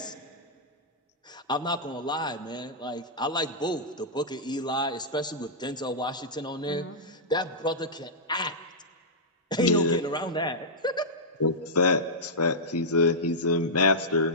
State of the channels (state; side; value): normal; both; correlation -0.11